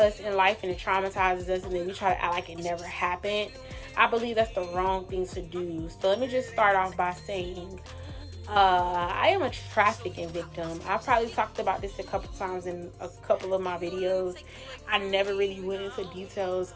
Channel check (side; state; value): both; identical; correlation 1.00